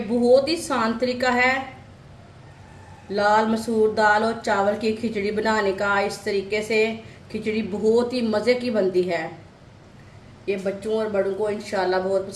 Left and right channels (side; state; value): both; identical; correlation 1.00